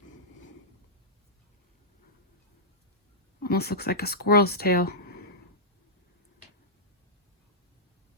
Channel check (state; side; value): normal; both; correlation -0.13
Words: Almost looks like a squirrel's tail.